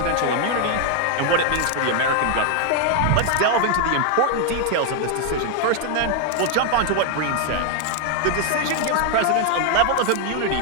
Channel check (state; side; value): different; both; correlation 0.00